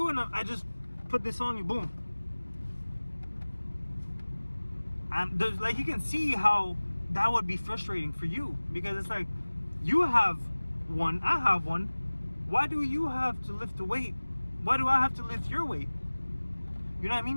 and I just put this on you, boom. And there's you can see how that would be frustrating for you, because it's like, you have one, I have one. Why do you have to lift the weight? Why do I have to lift your weight? You know what I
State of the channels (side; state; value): both; inverted; correlation -1.00